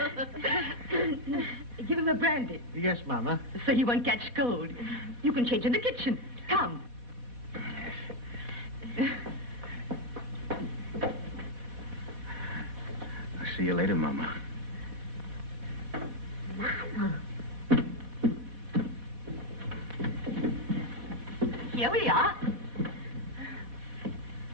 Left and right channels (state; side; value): late; left; 4.1 ms